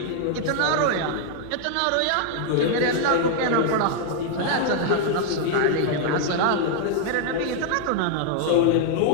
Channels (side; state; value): both; different; correlation 0.00